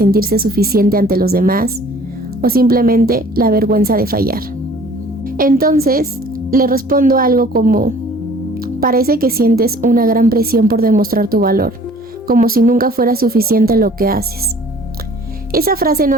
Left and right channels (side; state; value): both; normal; correlation 0.52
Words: suficiente ante los demás, o simplemente la vergüenza de fallar. Entonces, le respondo algo como: parece que sientes una gran presión por demostrar tu valor, como si nunca fuera suficiente lo que haces. Esa frase